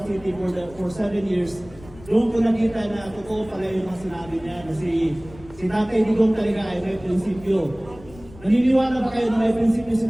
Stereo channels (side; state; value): left; noise; rumble, 20 dB below the sound